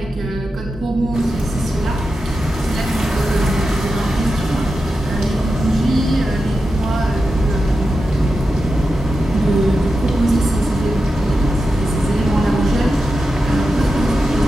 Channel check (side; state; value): both; normal; correlation 0.90